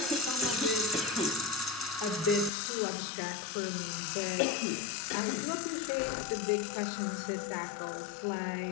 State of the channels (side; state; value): right; drops out; at 2.5 s